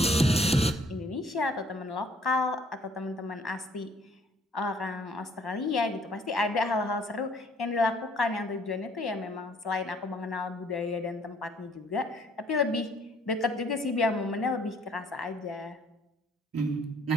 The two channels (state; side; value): normal; both; correlation 0.60